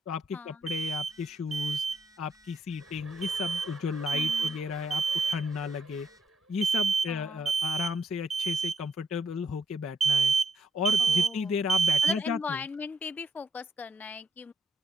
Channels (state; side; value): normal; both; correlation 0.76